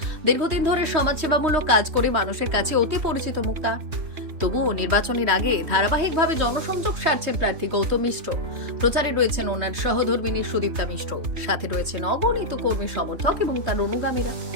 দীর্ঘদিন ধরে সমাজসেবামূলক কাজ করে মানুষের কাছে অতি পরিচিত মুখ তার। তবুও নির্বাচনের আগে ধারাবাহিকভাবে জনসংযোগ সারছেন প্রার্থী গৌতম মিশ্র। প্রচারে রয়েছেন ওনার সহধর্মিনী সুদীপ্তা মিশ্র, সাথে রয়েছেন অগণিত কর্মী সমর্থক এবং তার অনুগামীরা।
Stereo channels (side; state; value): left; late; 3.2 ms